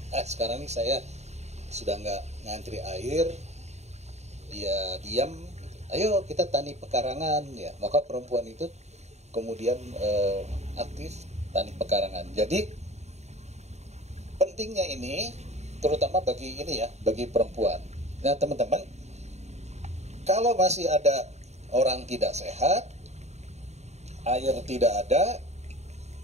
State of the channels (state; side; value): late; left; 0.32 ms